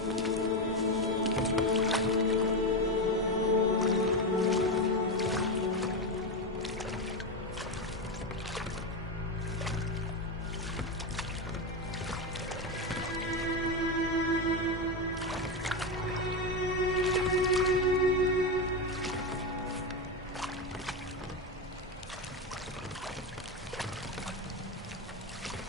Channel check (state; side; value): normal; both; correlation 0.13